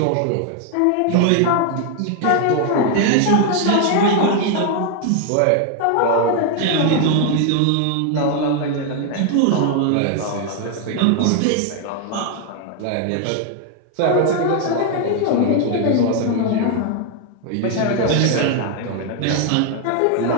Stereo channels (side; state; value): both; different; correlation 0.00